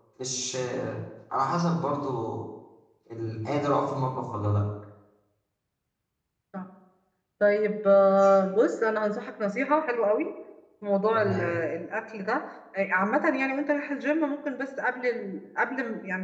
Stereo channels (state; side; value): identical; both; correlation 1.00